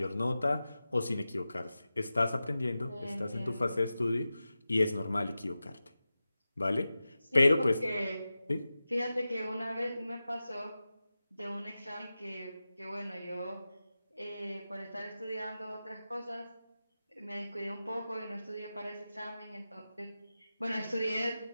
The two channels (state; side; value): inverted; both; correlation -0.94